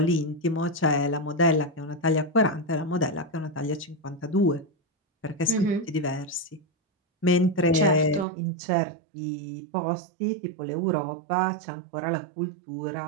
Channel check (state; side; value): drops out; left; at 8.2 s